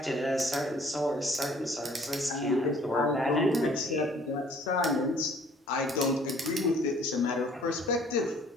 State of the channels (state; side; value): normal; both; correlation 0.56